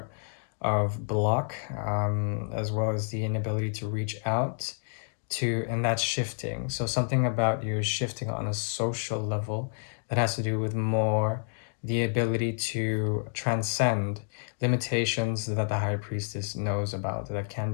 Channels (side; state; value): right; silent; digital silence